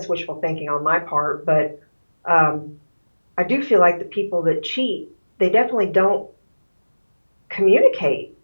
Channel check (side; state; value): both; inverted; correlation -1.00